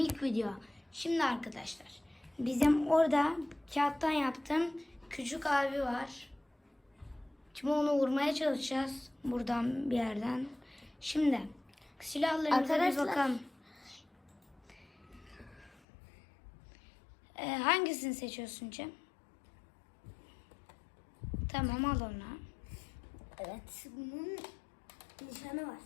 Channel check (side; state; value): right; drops out; at 15.8 s